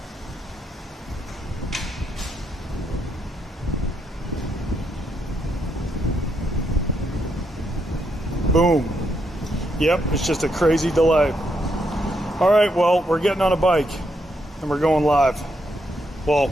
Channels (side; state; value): both; normal; correlation 0.78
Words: Boom. Yep, it's just a crazy delay. All right, well, we're getting on a bike and we're going live. Well,